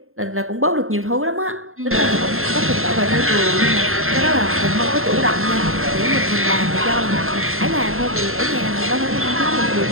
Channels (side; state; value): left; late; 0.61 ms